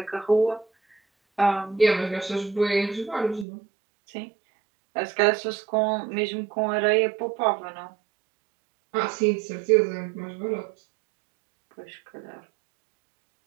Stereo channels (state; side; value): drops out; left; at 3.5 s